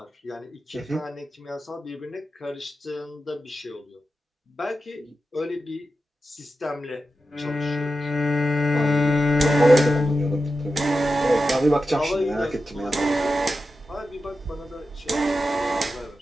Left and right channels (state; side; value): normal; both; correlation 0.91